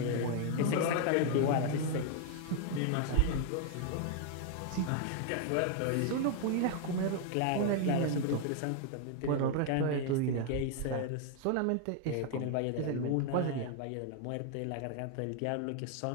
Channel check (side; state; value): both; different; correlation 0.00